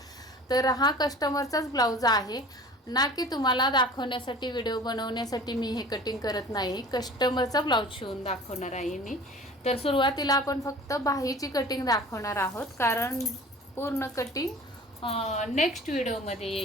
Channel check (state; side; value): normal; both; correlation 0.43